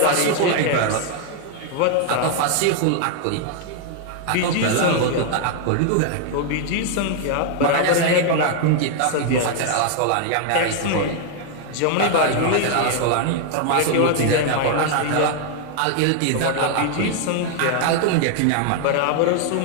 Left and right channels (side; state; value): both; different; correlation 0.00